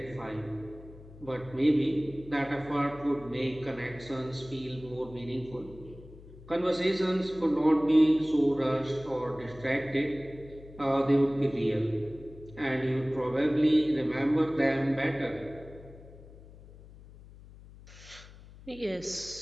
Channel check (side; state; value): left; noise; hum, 19 dB below the sound